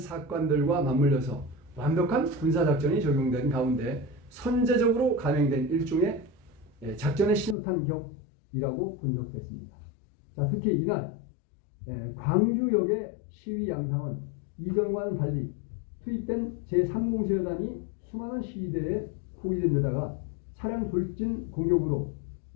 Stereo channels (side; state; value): right; drops out; at 7.6 s